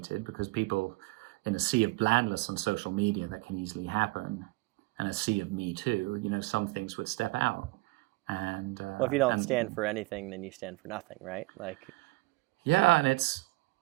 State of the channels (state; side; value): quieter; left; 23.5 dB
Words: because people, in a sea of blandness on social media that can easily happen, and a sea of Me Too, some things would step out. And well, if you don't stand for anything, then you stand for nothing, right? Like, yeah, and it's